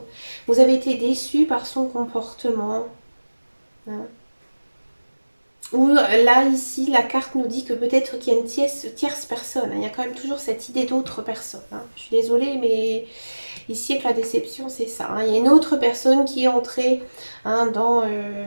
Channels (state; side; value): inverted; both; correlation -1.00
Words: Vous avez été déçu par son comportement, hein. Ou là, ici, la carte nous dit que peut-être qu'il y a une tierce personne, hein. Il y a quand même toujours cette idée d'autre personne, hein. Je suis désolée, mais ici, avec la déception, c'est ça, hein. Il y a une autre personne qui est entrée, hein, dans